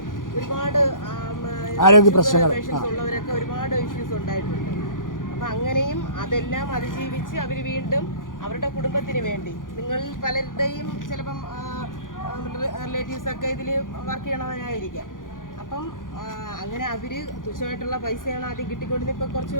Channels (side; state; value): right; late; 0.89 ms